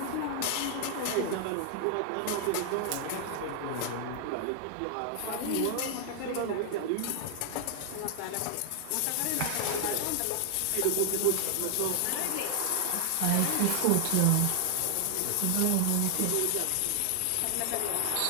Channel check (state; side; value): different; both; correlation 0.00